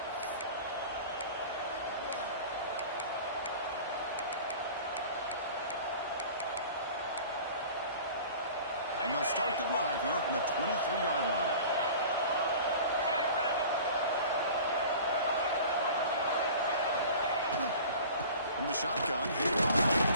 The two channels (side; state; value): both; inverted; correlation -0.42